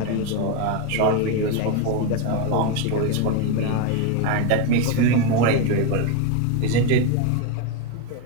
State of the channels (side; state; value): both; different; correlation 0.02